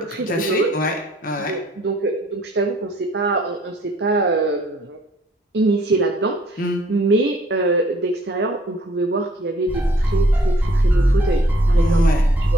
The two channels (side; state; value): both; normal; correlation 0.60